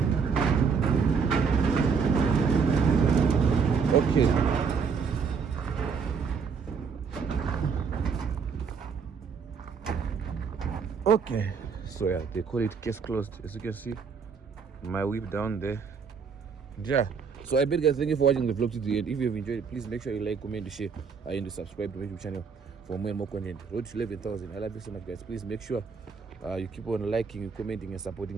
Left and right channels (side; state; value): left; quieter; 5.8 dB